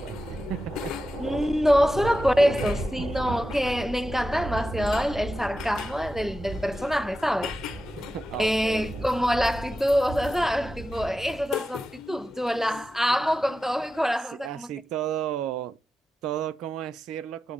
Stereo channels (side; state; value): both; normal; correlation 0.91